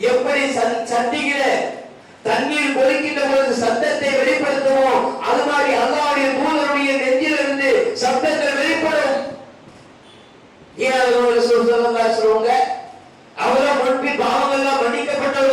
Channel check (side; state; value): both; identical; correlation 1.00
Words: எப்படி சட்டியில தண்ணீர் கொதிக்கின்ற பொழுது சத்தத்தை வெளிப்படுத்துவோம், அது மாதிரி அல்லாஹ்வுடைய தூதருடைய நெஞ்சிலிருந்து சத்தங்கள் வெளிப்படும். ஏன் சொல்லுங்க, அவர்கள் முன்பின் பாவங்கள் எல்லாம்